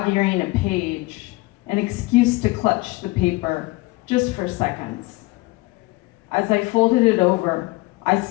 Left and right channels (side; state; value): right; quieter; 21.9 dB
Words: a page, an excuse to clutch the paper just for seconds. As I folded it over, I